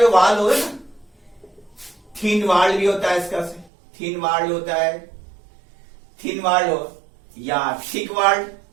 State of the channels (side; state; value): left; drops out; at 3.7 s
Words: वाल होगा ना, थिन वाल भी होता है इसका से. थिन वाल होता है, थिन वाल हो या थिक वाल.